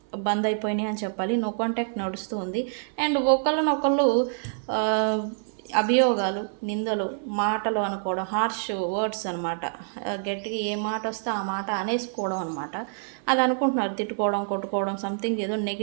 బంద్ అయిపోయినాయి అని చెప్పాలి. నో కాంటాక్ట్ నడుస్తూ ఉంది. అండ్ ఒకళ్ళనొకళ్ళు అభియోగాలు, నిందలు, మాటలు అనుకోవడం, హార్ష్ వర్డ్స్ అనమాట. గట్టిగా ఏ మాట వస్తే ఆ మాట అనేసుకోవడం అనమాట. అది అనుకుంటున్నారు, తిట్టుకోవడం, కొట్టుకోవడం, సంథింగ్ ఏదో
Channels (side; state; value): left; silent; 61 dB below the other